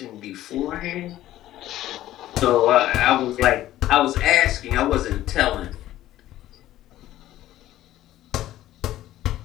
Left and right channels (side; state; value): right; quieter; 14.1 dB